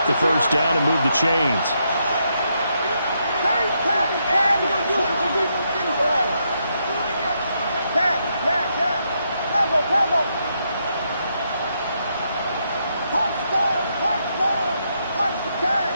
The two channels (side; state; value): both; inverted; correlation -0.79